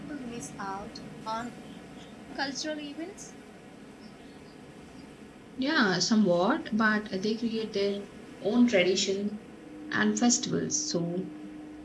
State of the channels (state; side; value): identical; both; correlation 1.00